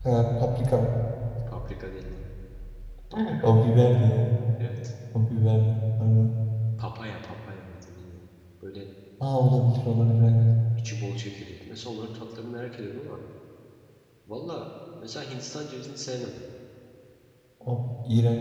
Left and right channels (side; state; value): both; identical; correlation 1.00